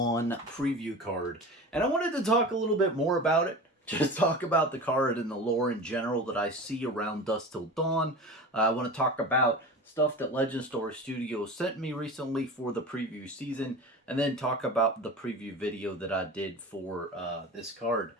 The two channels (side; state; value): both; normal; correlation 0.32